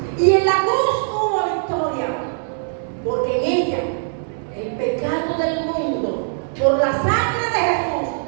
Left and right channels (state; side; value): silent; left; 65 dB below the other